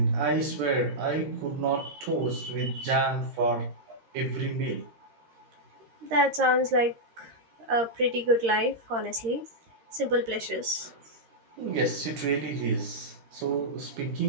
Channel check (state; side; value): late; left; 13 ms